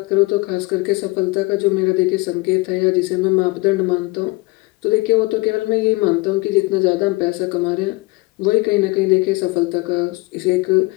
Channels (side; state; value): right; quieter; 23.9 dB